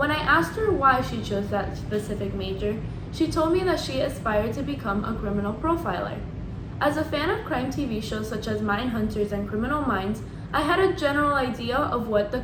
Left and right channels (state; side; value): identical; both; correlation 1.00